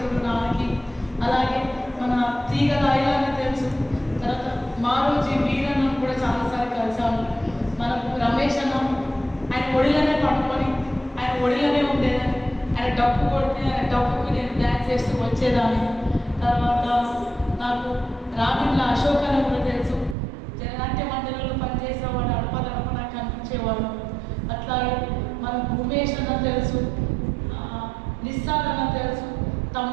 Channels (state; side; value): drops out; left; at 20.2 s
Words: నాకి. అలాగే మన తీగలాయిలాగా తెలుసు. తర్వాత మారోజీ వీరన్న కూడా చాలాసార్లు కలిసాము. మనకు రమేష్ అన్న ఆయన ఒడిలోనే పడుకొని ఆయన ఒడిలోనే ఉండేదని, ఆయన డప్పు కొడితే ఆయన డప్పుకి నేను డ్యాన్స్ చేస్తూ వచ్చేదాన్ని. తర్వాత నాకు రామిళ్ళ అశోక్ అని కూడా తెలుసు, జననాట్య మండలిలో చేసేవాడు. అట్లాగే మనకు ఉమేష్ అన్న తెలుసు, నిస్సార్ అన్న తెలుసు,